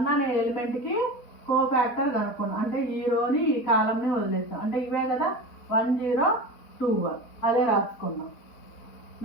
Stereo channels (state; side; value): late; right; 4.2 ms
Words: అనే ఎలిమెంట్కి కోఫాక్టర్ కనుక్కున్నాం. అంటే ఈ రోని ఈ కాలంని వదిలేస్తాం. అంటే ఇవే కదా 1 0 2 1 అదే రాసుకున్నాం.